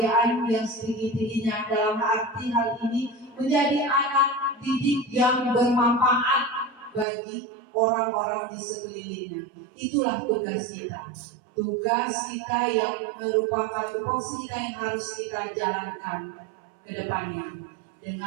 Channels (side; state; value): left; drops out; at 7.1 s